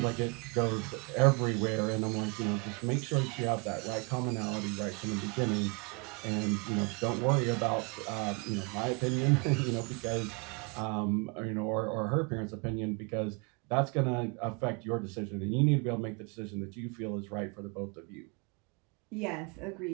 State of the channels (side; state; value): left; quieter; 31.6 dB